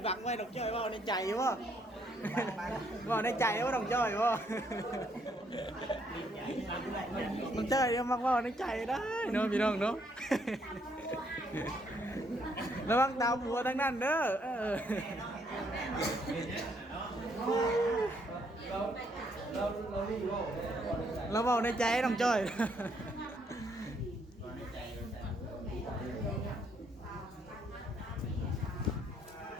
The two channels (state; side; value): normal; both; correlation 0.70